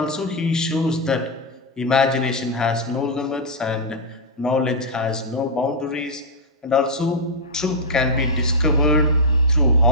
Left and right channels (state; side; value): normal; both; correlation -0.05